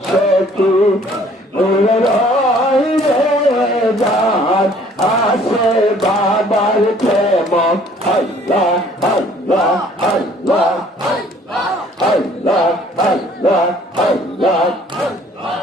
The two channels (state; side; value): normal; both; correlation 0.57